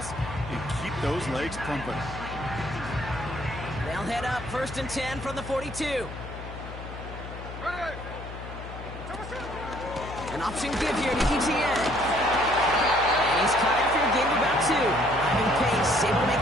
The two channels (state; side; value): noise; left; hum, 11 dB below the sound